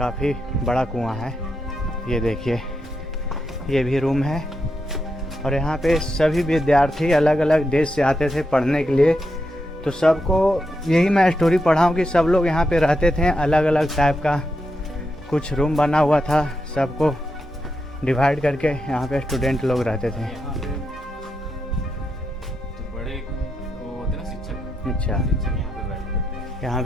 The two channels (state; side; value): normal; both; correlation 0.84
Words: बड़ा कुआं है। ये देखिए ये भी रूम है। और यहाँ पे सभी विद्यार्थी अलग अलग देश से आते थे पढ़ने के लिए। तो सबको यही मैं स्टोरी पढ़ा हूँ कि सब लोग यहाँ पे रहते थे, अलग अलग टाइप का कुछ रूम बना हुआ था, सबको डिवाइड करके यहाँ पे स्टूडेंट लोग रहते थे। तो बड़े वो होते ना शिक्षक, अच्छा यहाँ पे बैठते थे। यहाँ